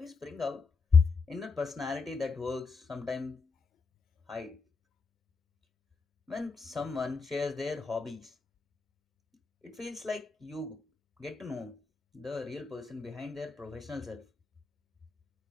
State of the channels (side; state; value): right; quieter; 4.7 dB